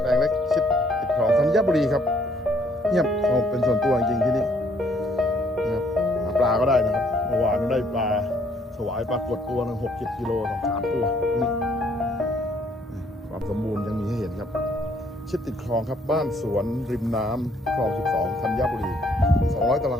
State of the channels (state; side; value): normal; both; correlation 0.65